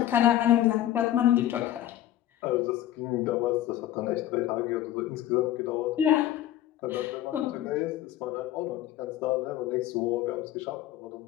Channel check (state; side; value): quieter; right; 12.8 dB